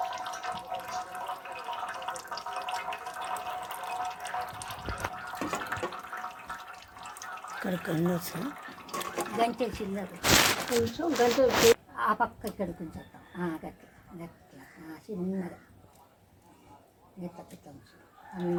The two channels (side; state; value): both; identical; correlation 1.00